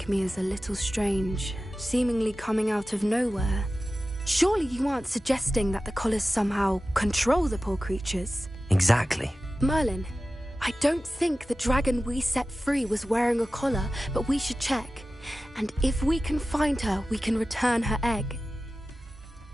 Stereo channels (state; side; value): normal; both; correlation 0.95